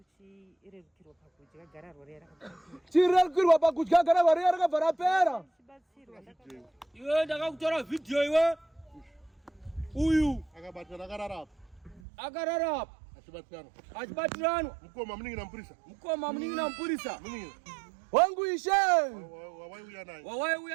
Chirerukirwa pakudya gararwa riya rakapera. Chirerukirwa pakudya gararwa riya rakabva rapera. Iwe ndakakutora video iwe. Uyu Akabatana akarara apa. Akarara apa. Achibatirano. Mukoma muningina mpurisa. Mukoma muningina mpurisa. Muningina. Wangu Ishe. Wawaiuya naye.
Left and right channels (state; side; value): drops out; left; at 12.0 s